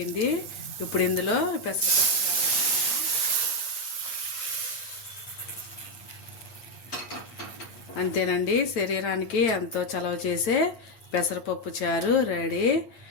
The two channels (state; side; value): late; right; 9.4 ms